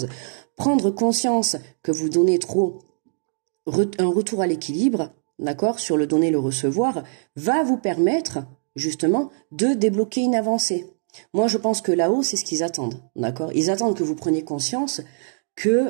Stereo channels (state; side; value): silent; left; digital silence